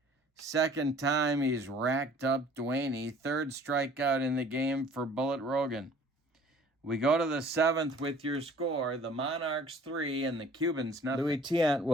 Second time he's racked up Duaney. 3rd strikeout in the game for Bullet Rogan. We go to the 7th with your score. The Monarchs 3 and the Cubans nothing. Louis Tiant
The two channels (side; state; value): both; normal; correlation 0.53